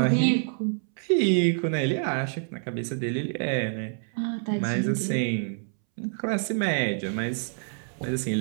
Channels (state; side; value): silent; left; 60 dB below the other